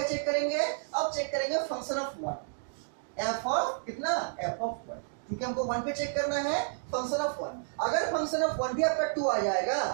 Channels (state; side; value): silent; left; digital silence